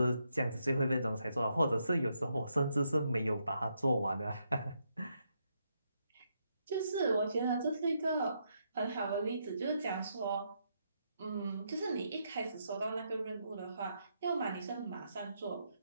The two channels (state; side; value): inverted; both; correlation -0.79